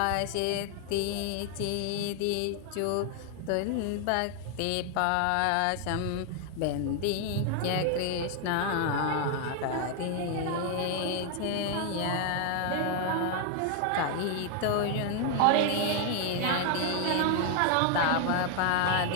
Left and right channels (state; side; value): different; both; correlation 0.00